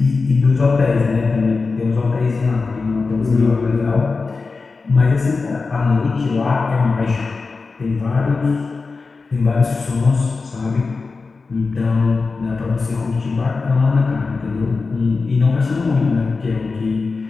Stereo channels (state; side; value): quieter; right; 4.2 dB